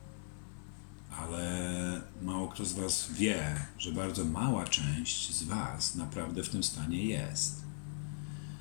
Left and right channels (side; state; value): right; silent; digital silence